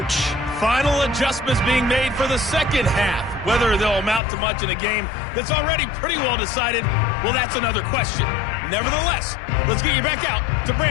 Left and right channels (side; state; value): right; drops out; at 4.2 s